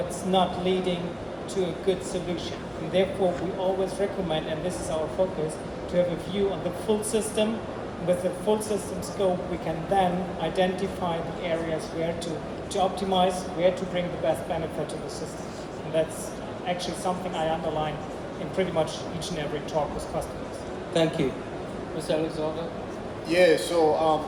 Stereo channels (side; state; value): both; identical; correlation 1.00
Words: not leading to a good solution. And therefore, we always recommend, and this is our focus, to have a view on the full system. With the full system scope, we can then identify the areas where to optimize, where to bring the best benefit to the system. And that's actually something I underline in pretty much each and every talk with customers. Thank you. Mr. Alexander? Yeah, so